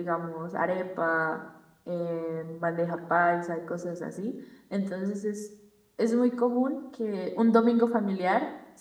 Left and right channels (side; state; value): both; identical; correlation 1.00